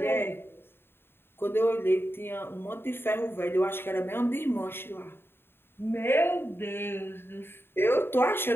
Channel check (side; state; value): right; late; 0.11 ms